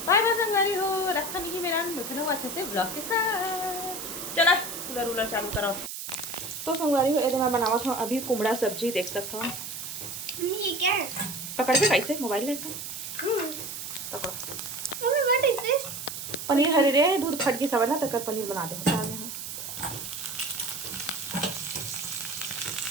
बाय बाय संगवारी हो रखा नहीं मेरा मिथुन अच्छे से ब्लॉग के साथ चला कूलर उलर चालू करो। तो संगवारी हो, मैं बनावत हूँ अभी कुमड़ा सब्जी, देख सकते हो। ये क्या है? पकड़ के कैसे मोबाइल लेता पकड़ो। Mummy what is this? Paneer हरे रे दूध फट गई सब ना, तक पनीर बना दे।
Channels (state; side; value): noise; right; hiss, 7 dB below the sound